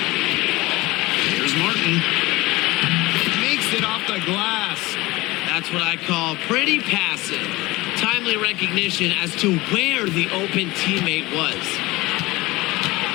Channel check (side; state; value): right; quieter; 20.7 dB